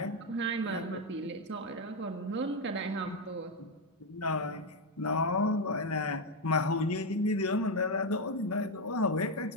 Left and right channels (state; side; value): normal; both; correlation 0.06